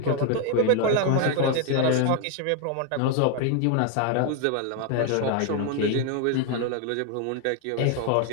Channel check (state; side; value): different; both; correlation 0.01